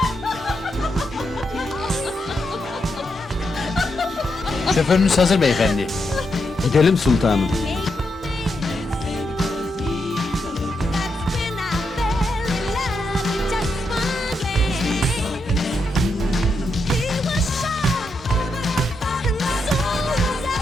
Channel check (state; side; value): normal; both; correlation 0.82